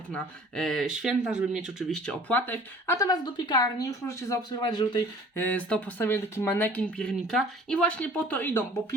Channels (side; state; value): both; normal; correlation 0.49